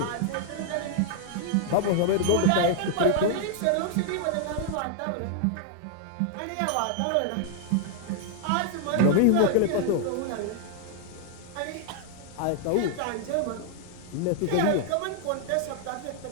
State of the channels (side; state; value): both; different; correlation 0.00